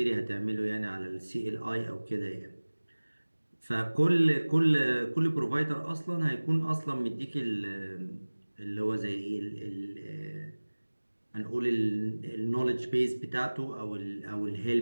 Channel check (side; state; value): both; inverted; correlation -1.00